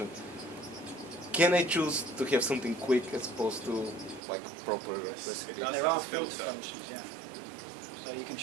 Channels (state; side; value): drops out; left; at 4.2 s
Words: Can I choose to have something quick as opposed to like proper recipe? There are filter functions, yeah. So you can